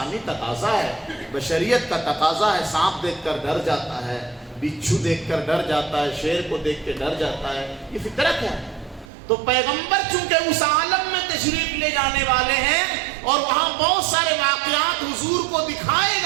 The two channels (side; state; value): left; drops out; at 9.1 s